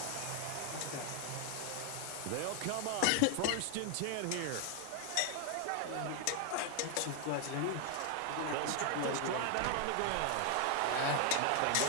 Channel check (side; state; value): both; different; correlation 0.00